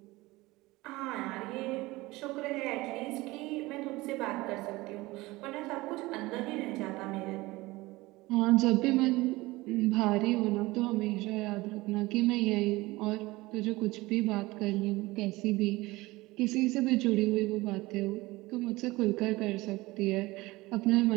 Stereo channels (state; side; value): quieter; left; 20.5 dB